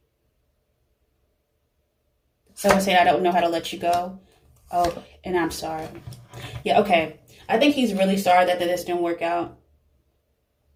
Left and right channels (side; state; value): both; identical; correlation 1.00